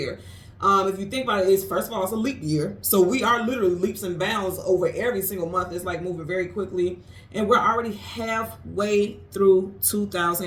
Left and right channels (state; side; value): identical; both; correlation 1.00